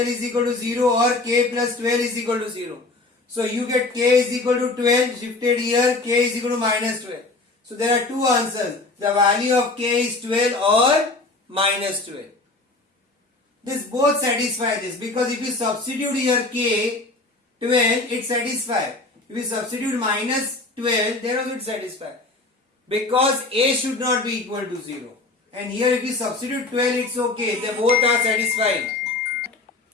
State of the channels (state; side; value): quieter; right; 3.2 dB